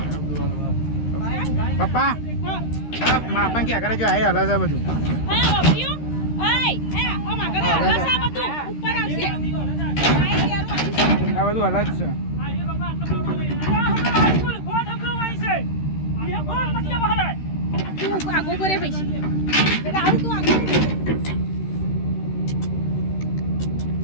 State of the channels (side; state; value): right; late; 13 ms